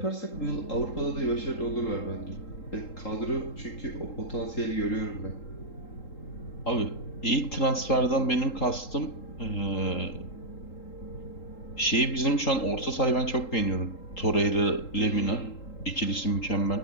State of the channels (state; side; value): late; right; 3.8 ms